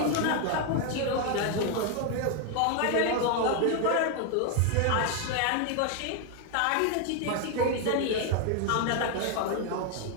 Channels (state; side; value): different; both; correlation 0.01